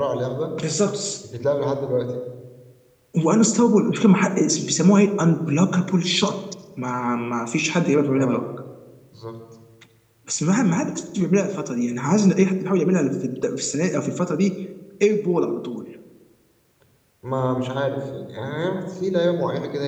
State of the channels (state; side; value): identical; both; correlation 1.00